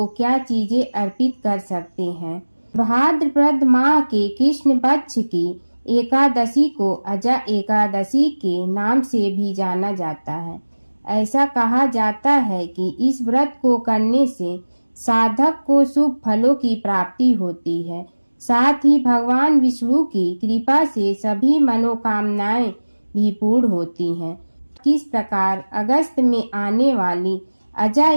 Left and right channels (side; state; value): both; inverted; correlation -1.00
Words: क्या चीजें अर्पित कर सकते हैं? भाद्रपद माह के कृष्ण पक्ष की एकादशी को अजा एकादशी के नाम से भी जाना जाता है। ऐसा कहा जाता है कि इस व्रत को करने से साधक को शुभ फलों की प्राप्ति होती है। साथ ही भगवान विष्णु की कृपा से सभी मनोकामनाएं भी पूर्ण होती हैं। किस प्रकार अगस्त में आने वाली अजा